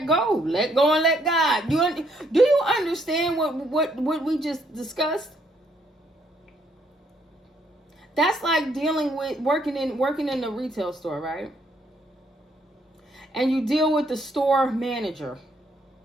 go and let God. Do you understand what we just discussed? That's like dealing with working in the retail store, right? And you deal with the store manager.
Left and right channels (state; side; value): normal; both; correlation 0.70